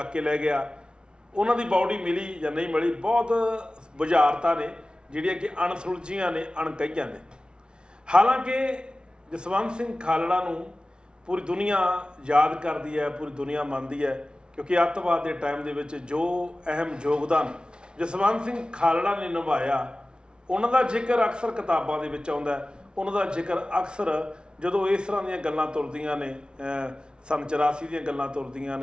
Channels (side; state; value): left; late; 0.055 ms